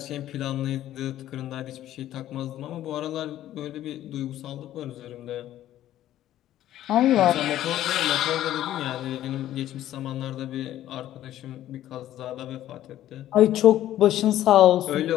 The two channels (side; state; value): right; quieter; 12.9 dB